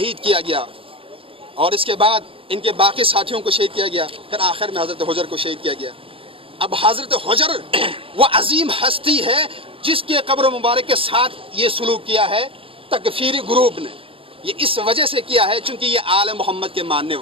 کیا گیا، اور اس کے بعد ان کے باقی ساتھیوں کو شہید کیا گیا، پھر آخر میں حضرت حجر کو شہید کیا گیا۔ اب حضرت حجر وہ عظیم ہستی ہے جس کے قبر مبارک کے ساتھ یہ سلوک کیا ہے تکفیری گروپ نے، یہ اس وجہ سے کیا ہے چونکہ یہ آل محمد کے ماننے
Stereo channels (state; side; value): late; left; 0.26 ms